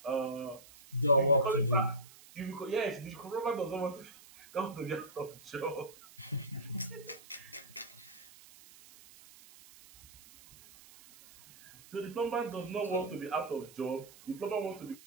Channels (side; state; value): right; noise; hiss, 21 dB below the sound